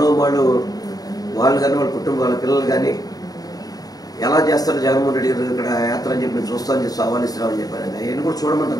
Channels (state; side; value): late; right; 0.18 ms